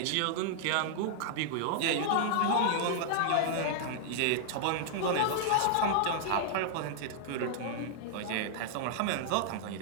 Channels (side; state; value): both; different; correlation -0.01